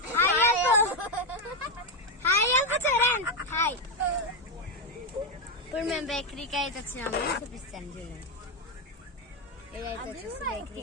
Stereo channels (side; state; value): both; normal; correlation 0.07